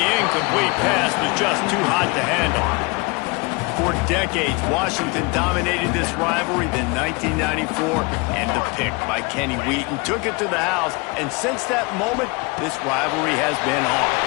incomplete pass was just too hot to handle. For decades, Washington dominated this rivalry. Then 1994, and the pick by Kenny Wheaton took it to the house. And since that moment, this rivalry has been on.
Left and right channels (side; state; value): right; quieter; 27.9 dB